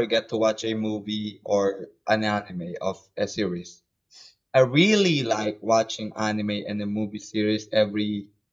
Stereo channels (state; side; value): identical; both; correlation 1.00